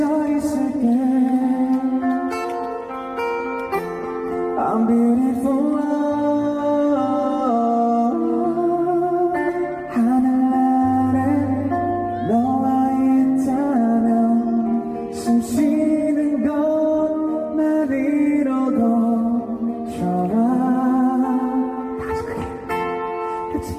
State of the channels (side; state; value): both; identical; correlation 1.00